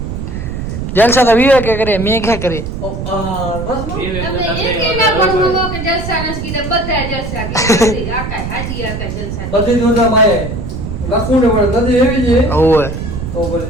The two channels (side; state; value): right; noise; rumble, 6 dB below the sound